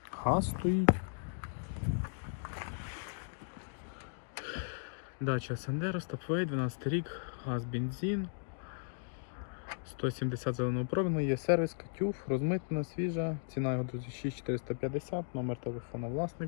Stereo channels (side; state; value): right; silent; digital silence